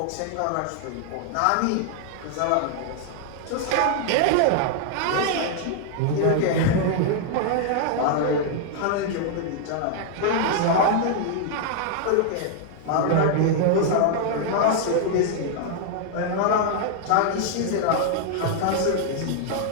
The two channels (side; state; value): both; different; correlation 0.00